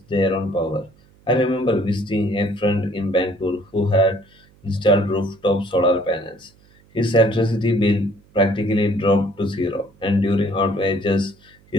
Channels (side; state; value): right; noise; hum, 30 dB below the sound